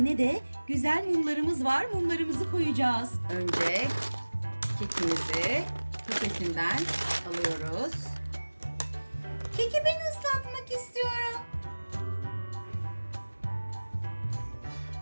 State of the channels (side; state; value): both; inverted; correlation -1.00